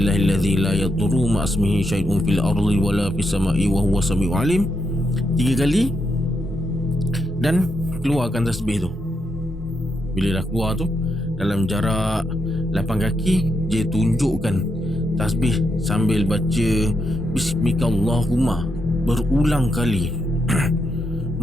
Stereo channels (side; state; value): both; normal; correlation 0.82